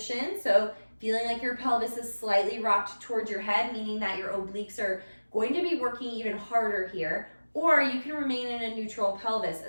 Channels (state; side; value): inverted; both; correlation -1.00